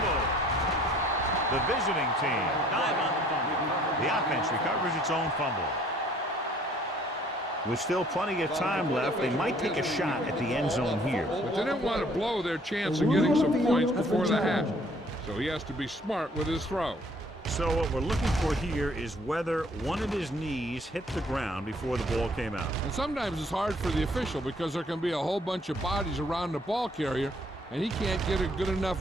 The visiting team dive on the fumble. The offense recovers its own fumble. With still plenty of time left, they might take a shot at the end zone here. But they didn't want to blow their chance of getting some points before the half. So he has to be smart with his throw. So what we're looking for here is whether one of his knees hit the ground before the ball came out. And sometimes it's hard for the official because there can be a whole bunch of bodies around the ball carrier, and he can't get a good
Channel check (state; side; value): normal; both; correlation 0.60